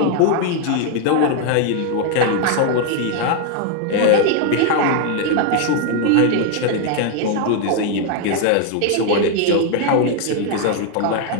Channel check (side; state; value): both; different; correlation 0.00